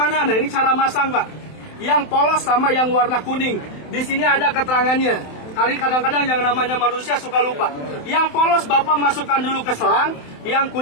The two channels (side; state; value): right; late; 27 ms